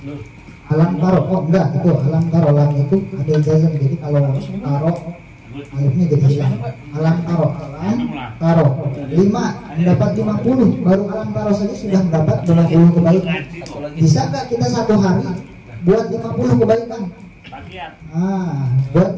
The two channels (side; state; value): both; identical; correlation 1.00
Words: alam taro, oh enggak, itu alam taro, lam itu ada jazam, jadi kalau taro alifnya jadi hilang. Alam taro 5 mendapat 50, baru alam taro saja sudah mendapat 20 kebaikan. Bisa nggak kita satu hari buat 50 kebaikan? Buat